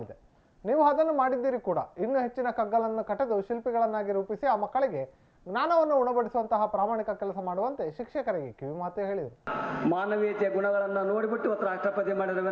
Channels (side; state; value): both; identical; correlation 1.00